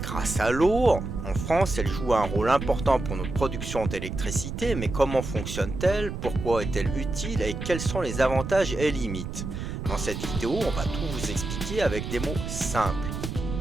à l'eau. En France, elle joue un rôle important pour notre production d'électricité, mais comment fonctionne-t-elle? Pourquoi est-elle utile? Et quels sont les avantages et limites? Dans cette vidéo, on va tout vous expliquer avec des mots simples.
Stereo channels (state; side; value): noise; right; rumble, 6 dB below the sound